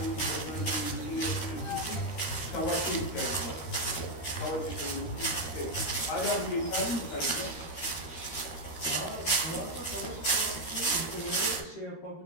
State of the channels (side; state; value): right; late; 13 ms